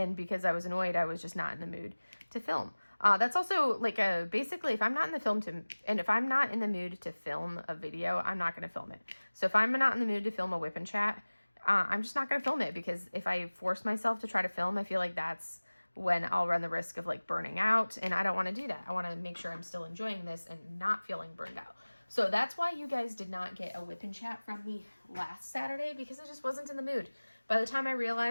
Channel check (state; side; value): inverted; both; correlation -1.00